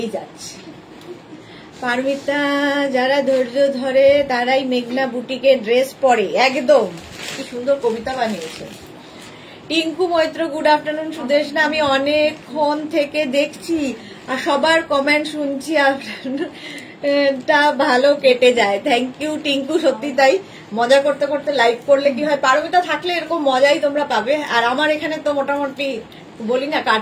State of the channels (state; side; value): identical; both; correlation 1.00